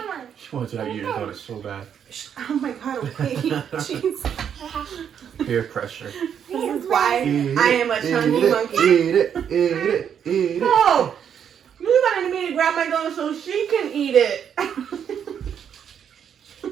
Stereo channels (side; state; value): left; quieter; 8.3 dB